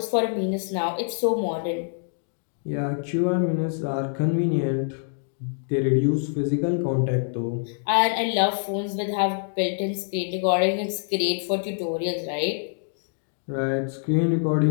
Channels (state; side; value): silent; right; digital silence